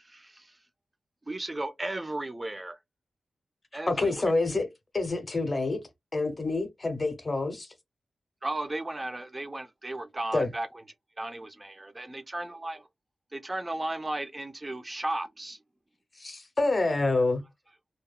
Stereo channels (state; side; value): normal; both; correlation 0.94